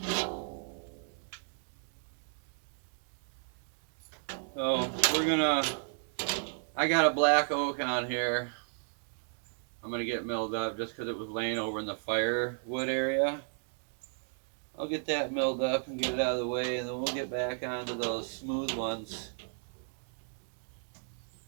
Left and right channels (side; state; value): left; silent; digital silence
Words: So I got a black oak on here. I'm gonna get milled up just because it was laying over in the firewood area. I'll get that milled up and get it out of the way, and then we'll get back onto those smooth ones.